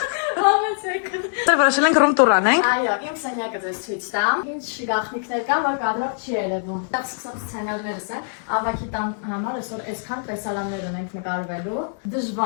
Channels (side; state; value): right; silent; digital silence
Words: Համեցեք։ Դե որոշել ենք ռում տուր անենք։ Այո, իմ սենյակը ձեզ ցույց տամ։ Ինչ գաղտնիքներ կան, որ կադրող չի երևում։ Դա սկսած սցենարներս են։ Ավակի տան համար այսօր այսքան տեսարաններ ունենք նկարվելու։